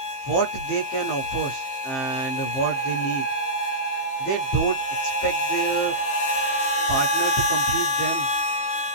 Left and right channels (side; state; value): right; late; 15 ms